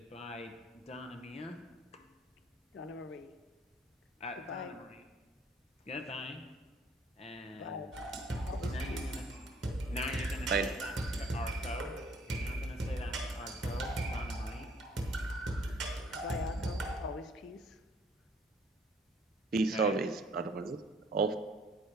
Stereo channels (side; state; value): both; normal; correlation 0.60